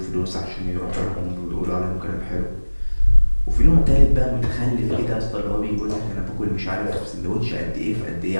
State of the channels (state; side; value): inverted; both; correlation -1.00